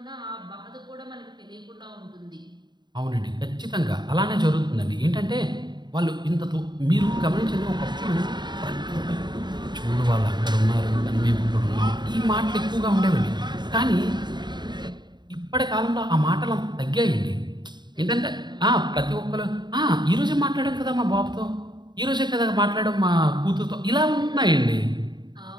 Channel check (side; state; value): left; late; 0.21 ms